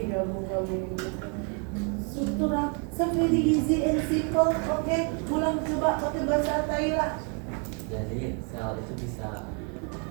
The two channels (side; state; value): left; quieter; 38.2 dB